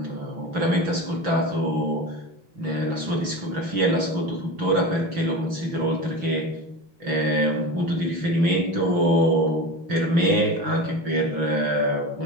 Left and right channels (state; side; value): late; left; 6.0 ms